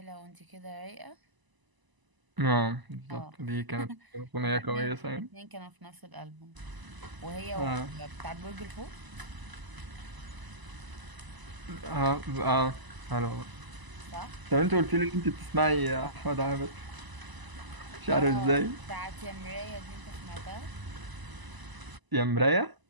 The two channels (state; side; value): late; left; 1.0 ms